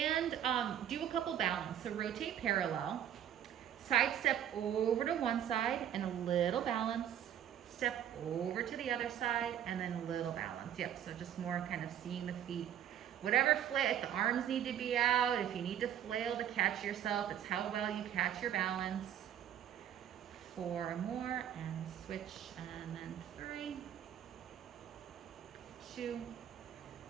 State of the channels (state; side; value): quieter; left; 10.2 dB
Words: do a couple balance. So rotate parallel. Side step over to one side and a little balance. Step over to the other side and then a little balance. Yep, so just more kind of seeing the feet whatever flail, if the arms need to be out, if you need to flail to catch yourself, it's how well you catch your balance. 4 more and switch, and then 3, 2,